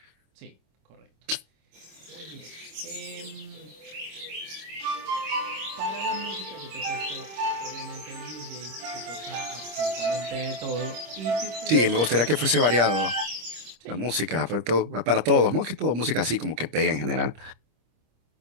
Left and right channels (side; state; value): left; late; 26 ms